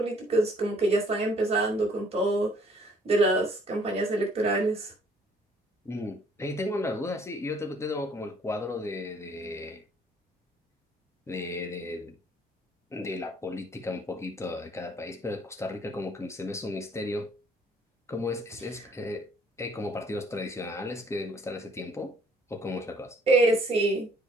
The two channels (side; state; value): both; normal; correlation 0.61